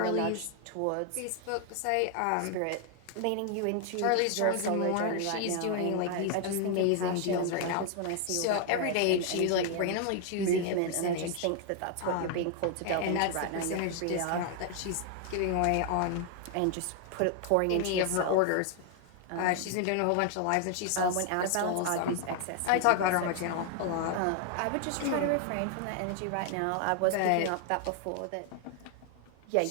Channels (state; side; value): different; both; correlation 0.00